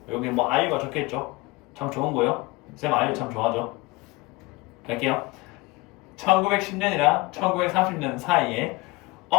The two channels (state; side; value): quieter; right; 23.2 dB